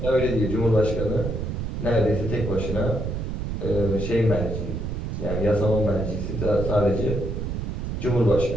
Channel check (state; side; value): noise; right; rumble, 3 dB below the sound